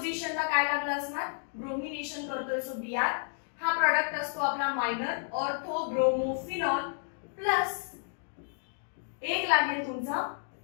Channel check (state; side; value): silent; right; digital silence